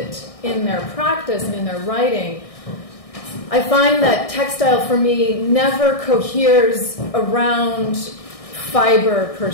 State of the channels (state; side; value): late; right; 1.6 ms